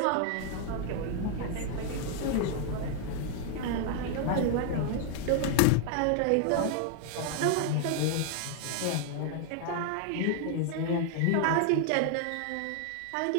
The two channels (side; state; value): both; different; correlation 0.00